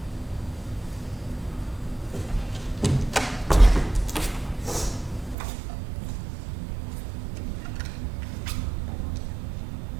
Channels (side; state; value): left; drops out; at 5.4 s